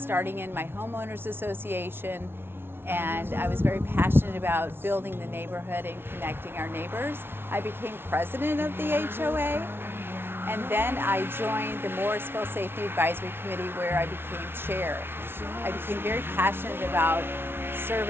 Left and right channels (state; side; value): late; left; 0.11 ms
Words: in my homeowners association, and I was very passionate about building the neighborhood and connecting our neighbors. I became president of the HOA, and then I joined the Morrisville Safety Advisory Committee where I became chair. I became very passionate about